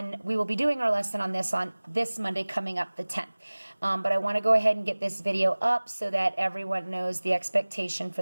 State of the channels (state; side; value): inverted; both; correlation -1.00